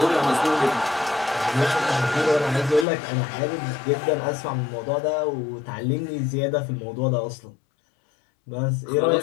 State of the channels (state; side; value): drops out; right; at 2.9 s